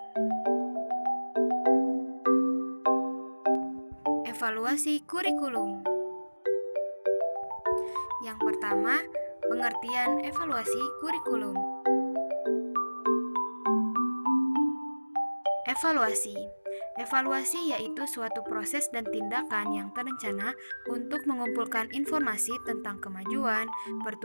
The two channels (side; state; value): both; inverted; correlation -1.00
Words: Evaluasi kurikulum. Yang pertama, pengertian evaluasi kurikulum. Evaluasi yaitu suatu proses dan tindakan yang terencana untuk mengumpulkan informasi tentang kemajuan,